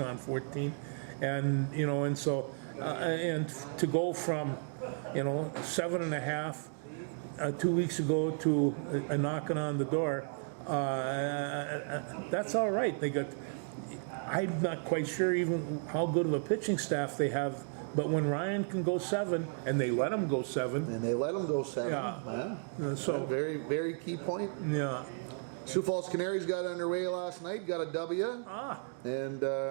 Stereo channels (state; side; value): silent; left; 55 dB below the other